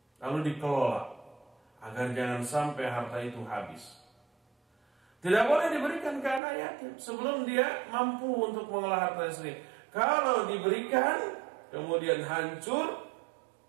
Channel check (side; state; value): left; drops out; at 6.4 s